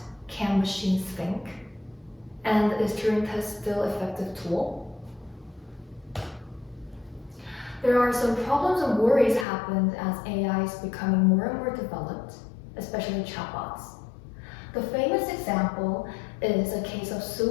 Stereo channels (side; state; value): right; drops out; at 9.5 s